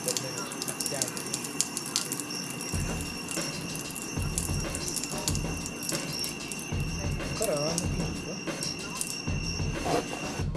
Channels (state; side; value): identical; both; correlation 1.00